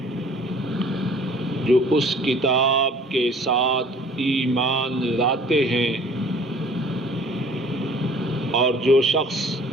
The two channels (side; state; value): both; normal; correlation 0.51